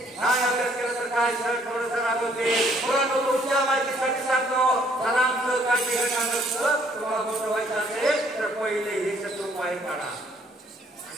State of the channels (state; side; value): normal; both; correlation 0.64